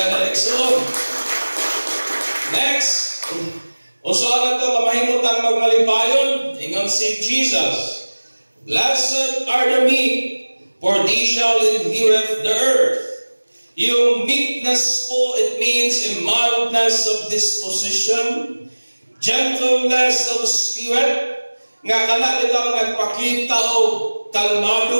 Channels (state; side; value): inverted; both; correlation -1.00